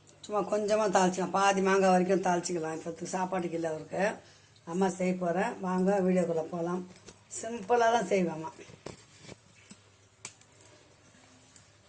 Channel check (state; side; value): identical; both; correlation 1.00